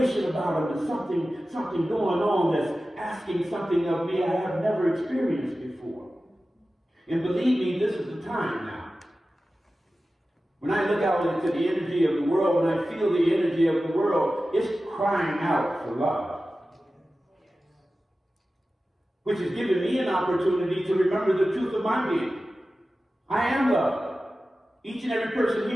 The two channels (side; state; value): both; normal; correlation 0.95